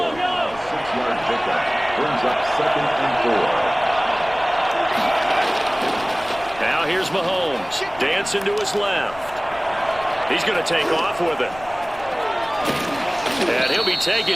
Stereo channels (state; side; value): noise; left; rumble, 20 dB below the sound